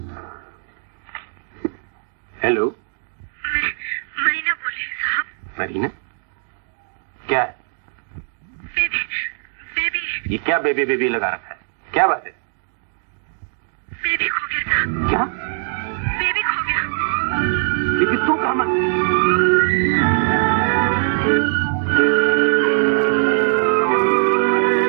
हेलो, मरीना बोले साहब। मरीना? क्या है? बेबी ये क्या बेबी बेबी लगा रखा है? क्या बात है? बेबी खो गया साहब। क्या? बेबी खो गया। लेकिन तू कहाँ?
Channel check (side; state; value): left; silent; digital silence